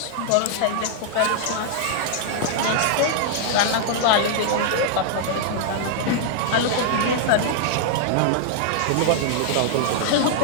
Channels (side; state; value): both; different; correlation -0.01